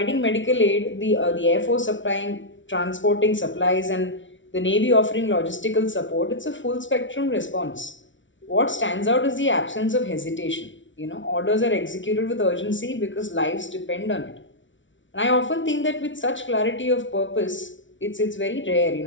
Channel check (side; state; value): right; late; 0.56 ms